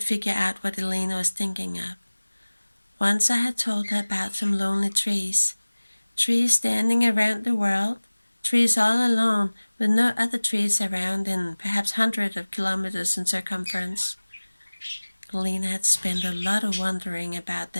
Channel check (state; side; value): inverted; both; correlation -1.00